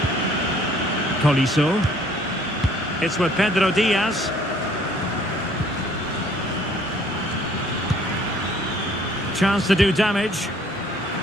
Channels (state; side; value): normal; both; correlation 0.58